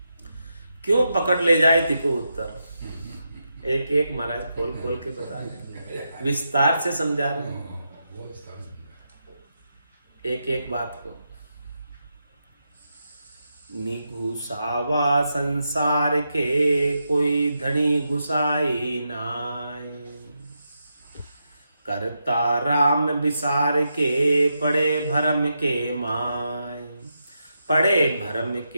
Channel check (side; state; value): both; inverted; correlation -0.85